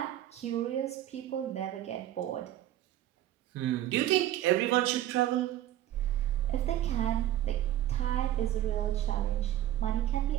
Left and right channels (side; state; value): left; quieter; 12.9 dB